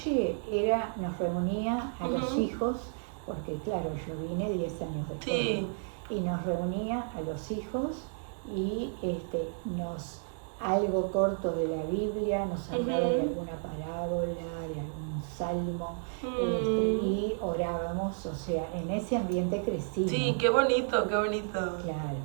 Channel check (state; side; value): silent; left; digital silence